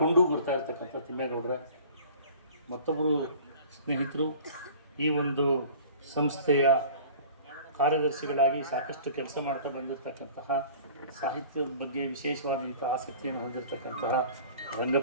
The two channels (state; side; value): inverted; both; correlation -0.45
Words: ಬರ್ತಾ ಇರ್ತಕ್ಕಂಥ ತಿಮ್ಮೇಗೌಡರ, ಮತ್ತೊಬ್ಬರು ಸ್ನೇಹಿತರು ಈ ಒಂದು ಸಂಸ್ಥೆಯ ಕಾರ್ಯದರ್ಶಿಗಳಾಗಿ ಸಾಕಷ್ಟು ಕೆಲಸ ಮಾಡ್ತಾ ಬಂದಿರತಕ್ಕಂತಹ, ಸಾಹಿತ್ಯದ ಬಗ್ಗೆ ವಿಶೇಷವಾದಂಥ ಆಸಕ್ತಿಯನ್ನು ಹೊಂದಿರತಕ್ಕಂತಹ